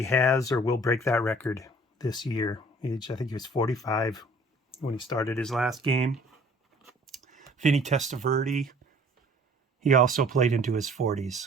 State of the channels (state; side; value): normal; both; correlation 0.53